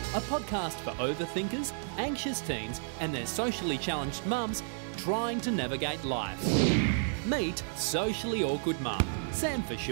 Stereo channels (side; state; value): left; silent; 57 dB below the other